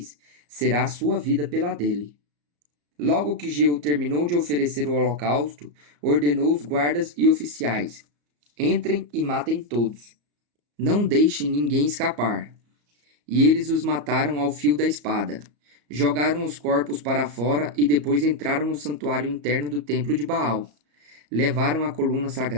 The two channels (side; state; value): left; late; 34 ms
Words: será a sua vida pela dele. Logo que Jeú terminou de oferecer o holocausto, ordenou os guardas e oficiais: entrem e matem todos. Não deixem ninguém escapar. E eles os mataram ao fio da espada. Jogaram os corpos para fora e depois entraram no santuário interno do templo de Baal. Levaram a coluna